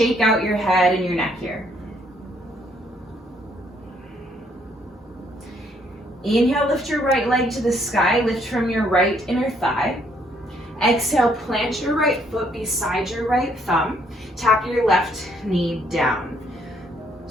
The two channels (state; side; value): normal; both; correlation 0.68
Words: out your head and your neck here. Inhale, lift your right leg to the sky, lift from your right inner thigh. Exhale, plant your right foot beside your right thumb. Tap your left knee down.